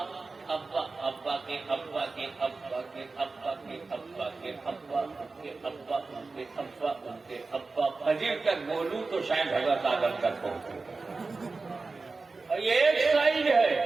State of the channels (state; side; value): quieter; left; 3.9 dB